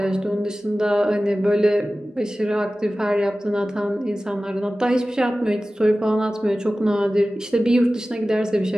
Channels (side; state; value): both; normal; correlation 0.96